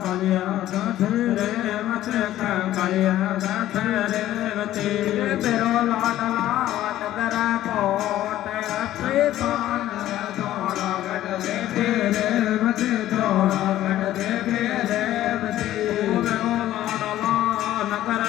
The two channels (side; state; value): right; quieter; 13.6 dB